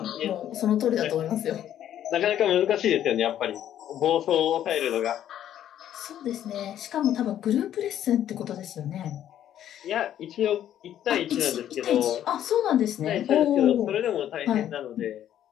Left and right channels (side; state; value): right; quieter; 11.0 dB